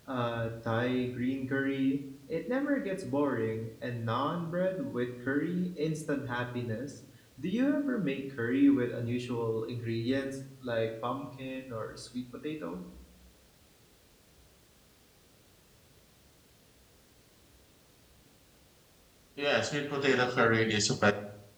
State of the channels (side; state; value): both; identical; correlation 1.00